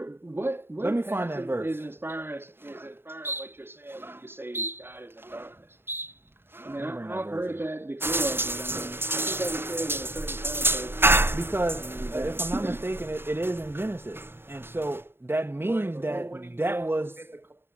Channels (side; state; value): left; late; 0.11 ms